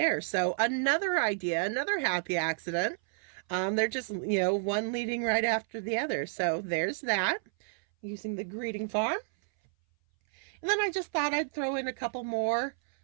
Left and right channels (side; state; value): left; silent; 57 dB below the other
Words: So another idea, another happy accident. They're just, one leading right after the other. So there's that, using the greeting farm. And then I just thought I'd throw in a couple more,